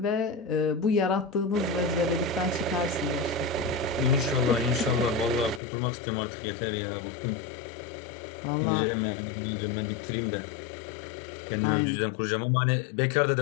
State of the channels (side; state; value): right; drops out; at 5.6 s